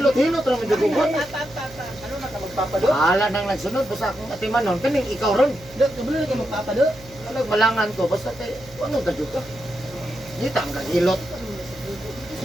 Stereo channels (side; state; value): right; noise; hum, 21 dB below the sound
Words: lang medyo gugot. Ala nang nagsunod, basta akong atiman nun. Kaning ikaw ron. Kabili ka magpapado. Alag malangan ko, basta kay, ano ka dyan ka? Dito ang kagilot.